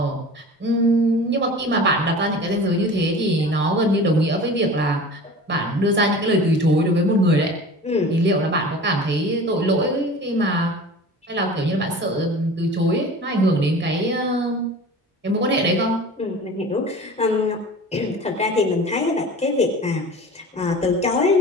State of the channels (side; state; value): both; normal; correlation 0.38